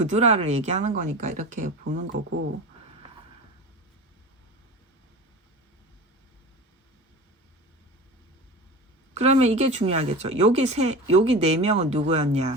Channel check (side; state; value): both; normal; correlation 0.32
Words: 얘기하는 거니까 이렇게 보는 거고, 그러면 이게 중요하겠죠. 여기 네 명은